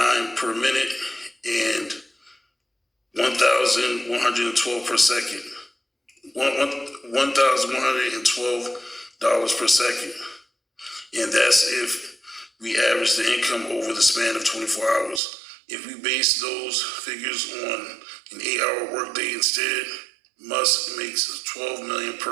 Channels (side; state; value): left; drops out; at 15.2 s